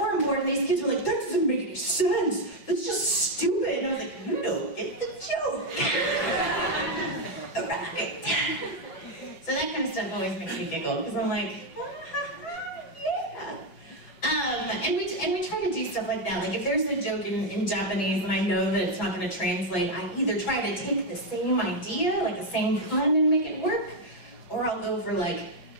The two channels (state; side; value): late; right; 6.0 ms